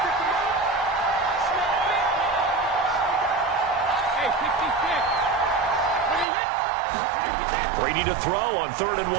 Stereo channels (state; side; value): drops out; left; at 6.2 s